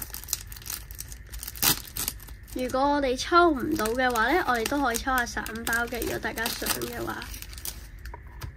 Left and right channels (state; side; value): identical; both; correlation 1.00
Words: 如果我哋抽唔到嘅話呢，我哋都可以抽下散包嘅。如果大家想嘅話